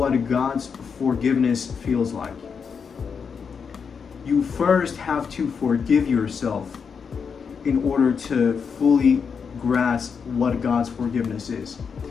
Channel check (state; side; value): quieter; right; 6.2 dB